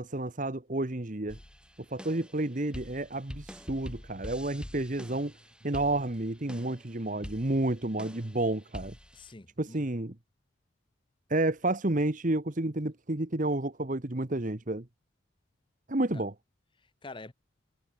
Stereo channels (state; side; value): normal; both; correlation 0.43